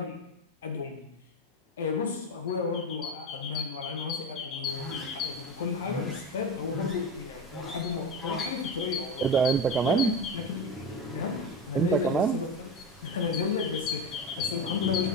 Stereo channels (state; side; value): normal; both; correlation 0.21